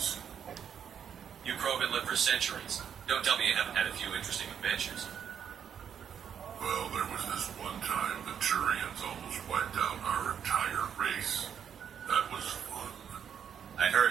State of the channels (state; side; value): quieter; left; 8.2 dB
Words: You Krogan lived for centuries. Don't tell me you haven't had a few interesting adventures. Well, there was this one time the Turians almost wiped out our entire race. That was fun. I